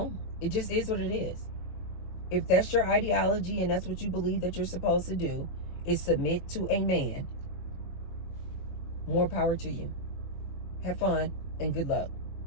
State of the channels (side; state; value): right; late; 22 ms